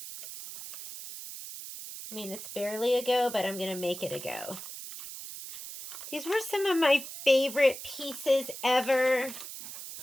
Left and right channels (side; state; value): right; noise; hiss, 10 dB below the sound